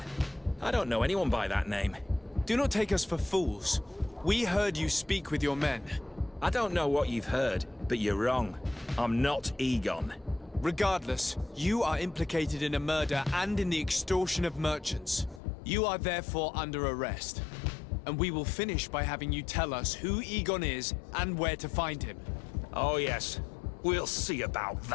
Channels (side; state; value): right; drops out; at 15.4 s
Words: I don't know anyone by that name. Do not take us for fools. We heard you speak with your men. I don't know what you've heard, but you're wrong. I'm not Egon. Regardless, you are implicated in a murder and in the extortion of merchants. You are therefore under arrest. And we will finish by having you tell us who Egon is and where to find him. Oh yes, we'll see about